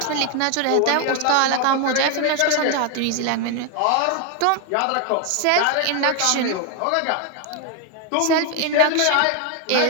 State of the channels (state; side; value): different; both; correlation 0.01